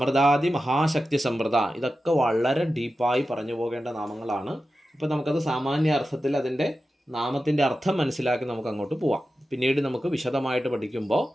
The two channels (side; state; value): both; normal; correlation 0.92